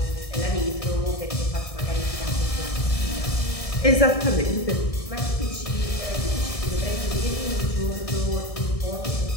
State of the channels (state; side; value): late; right; 1.6 ms